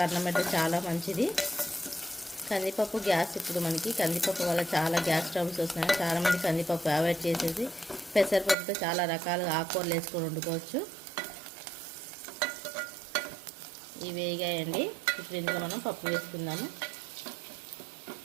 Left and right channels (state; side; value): drops out; left; at 8.6 s